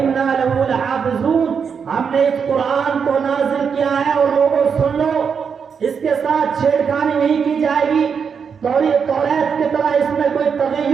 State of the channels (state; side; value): quieter; left; 6.4 dB